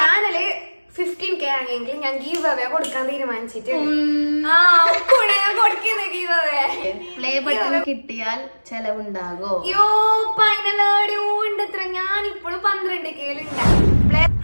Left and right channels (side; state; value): both; inverted; correlation -1.00